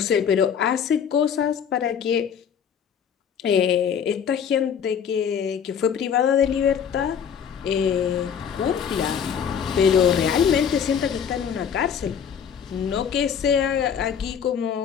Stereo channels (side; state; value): right; quieter; 7.7 dB